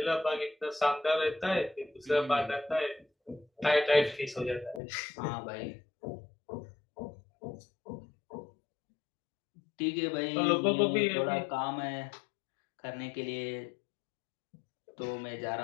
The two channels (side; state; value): right; drops out; at 4.8 s